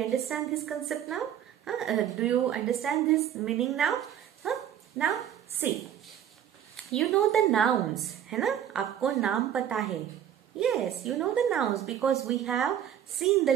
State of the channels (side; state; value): left; quieter; 10.0 dB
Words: understand this concept now? Do you understand this meaning now? Now see, you know the nouns, है ना? आपको नाम पता है. Yes, you know the nouns because we have seen